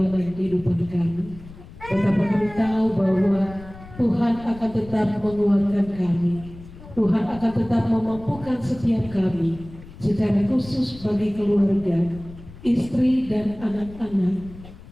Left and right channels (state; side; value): noise; left; rumble, 17 dB below the sound